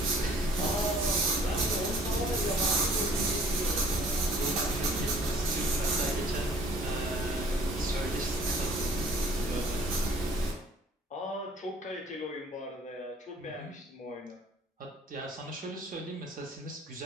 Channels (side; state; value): both; normal; correlation 0.55